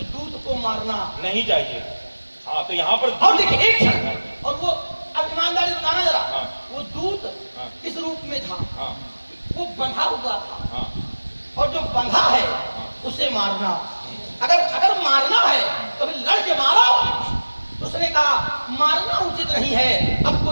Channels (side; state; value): both; inverted; correlation -1.00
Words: दूध को मारना नहीं चाहिए। हाँ, तो यहाँ पर और देखिए एक क्षण, और वो अब ईमानदारी बताना जरा। हाँ। वो दूध हाँ। किस रूप में था? हाँ, वो बंधा हुआ था, हाँ, और जो बंधा है उसे मारना। अगर मारना है तो फिर लड़ के मारो। तो उसने कहा मारना उचित नहीं है, अब